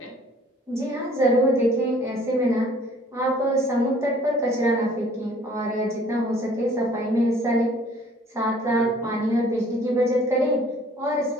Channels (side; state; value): both; normal; correlation 0.55